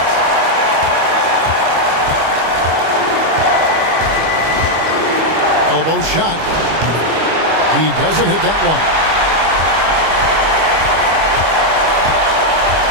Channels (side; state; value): left; late; 25 ms